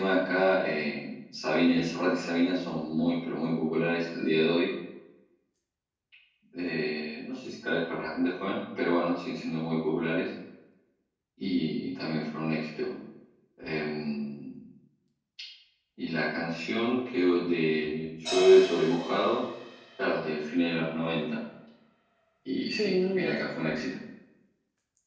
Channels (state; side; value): identical; both; correlation 1.00